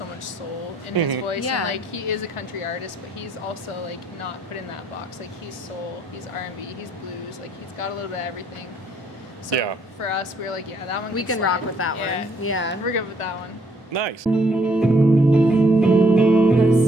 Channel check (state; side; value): normal; both; correlation 0.67